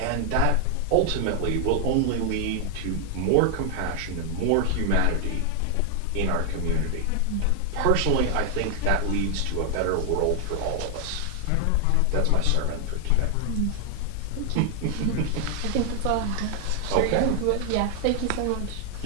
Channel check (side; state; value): both; different; correlation 0.00